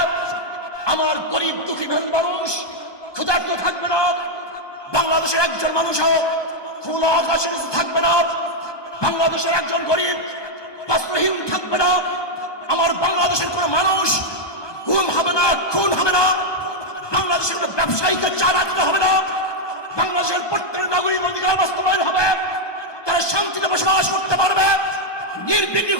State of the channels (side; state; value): right; late; 1.2 ms